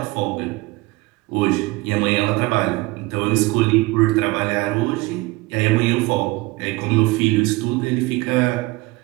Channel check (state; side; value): quieter; left; 22.3 dB